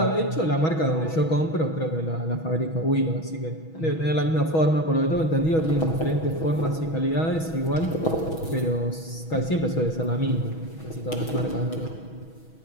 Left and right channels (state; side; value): late; right; 6.2 ms